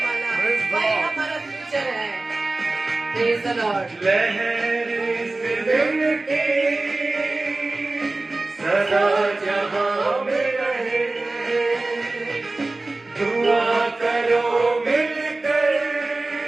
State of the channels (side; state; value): left; quieter; 3.1 dB